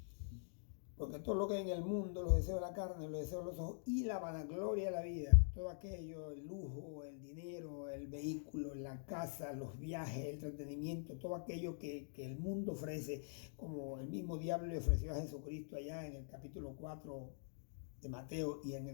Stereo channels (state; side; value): silent; right; digital silence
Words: Porque todo lo que hay en el mundo, los deseos de la carne, los deseos de los ojos y la vanagloria de la vida, todo aquello, el lujo, el dinero, el vehículo, la casa, los viajes, el entretenimiento, todo aquello que el mundo ofrece, como el mismo diablo le ofreció a Jesucristo allá en el capítulo 4 de Mateo y en